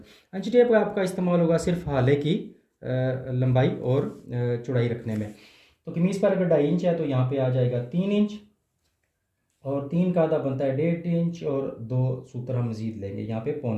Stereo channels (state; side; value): identical; both; correlation 1.00